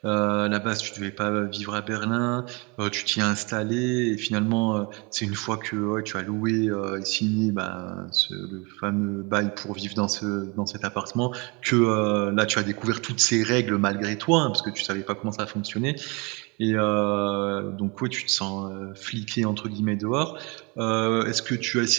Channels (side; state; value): left; quieter; 29.2 dB